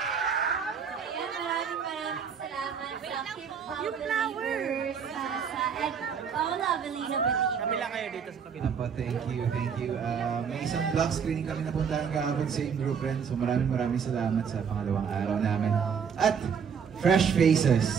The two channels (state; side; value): quieter; left; 6.9 dB